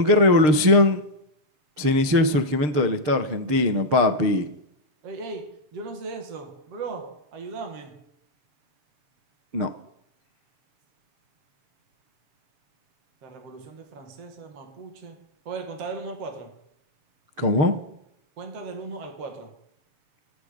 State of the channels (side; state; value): left; late; 6.6 ms